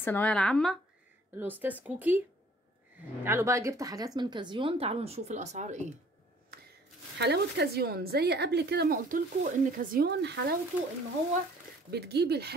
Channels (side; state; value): both; normal; correlation 0.56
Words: العامه، الاستاذ كوكي. تعالوا بقى، جبت حاجات من كازيون. تعالوا نشوف الاسعار ايه. حلاوه كازيون زي قبل كده ما قلت لكم ان كازيون حلاوته ان هو بتجيبي